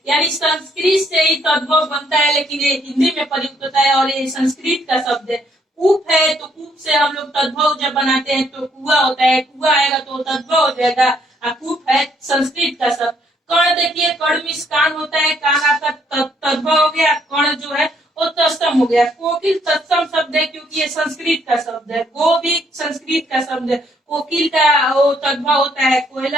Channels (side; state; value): both; normal; correlation 0.69